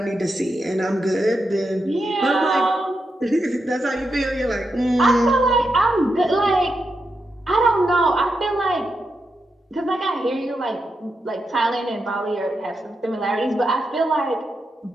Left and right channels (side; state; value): both; normal; correlation 0.86